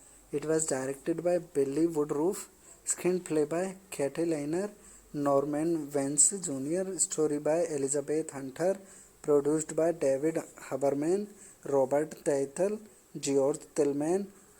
It was directed by Billy Woodruff, screenplay by Katie Liner, Norman Vance Jr., story by Elizabeth Hunter, produced by David Haberman, Robert Teitel, George Tillman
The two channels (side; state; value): both; identical; correlation 1.00